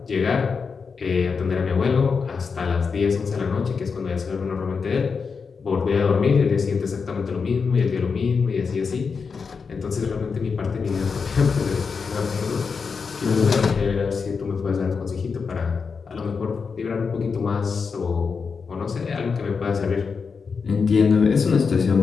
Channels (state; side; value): quieter; right; 5.4 dB